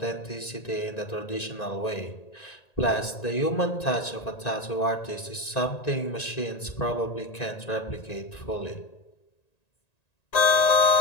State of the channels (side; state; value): right; late; 1.9 ms